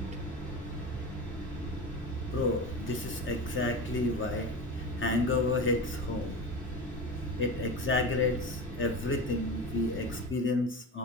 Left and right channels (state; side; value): normal; both; correlation 0.27